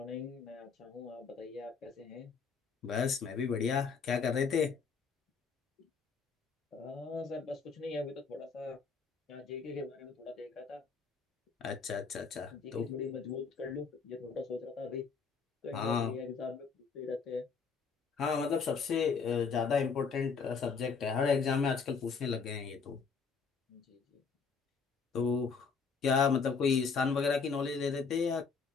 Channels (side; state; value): right; quieter; 5.5 dB